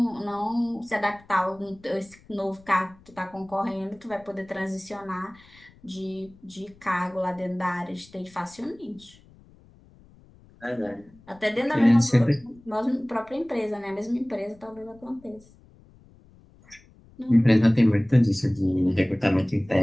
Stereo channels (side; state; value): left; noise; rumble, 26 dB below the sound